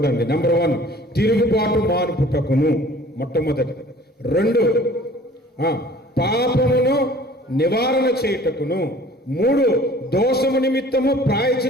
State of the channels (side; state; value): both; normal; correlation 0.49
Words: నెంబర్ 1 తిరుగుబాటు మానుపుటకును మొట్టమొదటి. 2 పాపమును నివారణ చేయుటకును. 3 దోషము నిమిత్తము